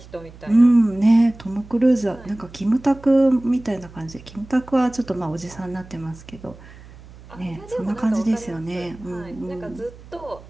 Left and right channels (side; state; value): right; noise; hum, 20 dB below the sound